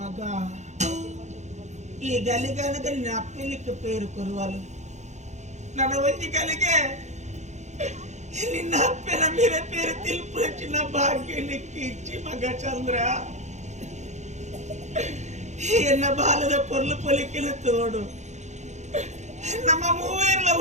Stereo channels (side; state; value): left; late; 0.34 ms